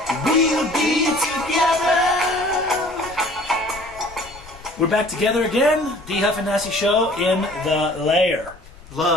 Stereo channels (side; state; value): left; noise; rumble, 20 dB below the sound